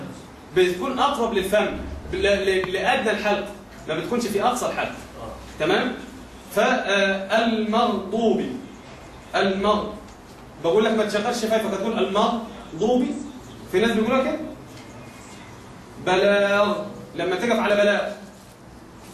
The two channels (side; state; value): both; identical; correlation 1.00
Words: بتكون اقرب للفم لادنى الحلق، ما بتكونش في اقصى الحلق. تمام؟ فالمغضوب، بقول لك ما تشغلش شفايفك، هتقول المغضوب. في ناس بيقولوا كده. بلاغ، لما تقف على